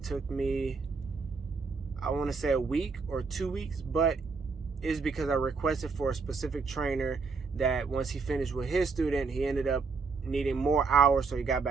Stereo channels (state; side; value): quieter; left; 4.7 dB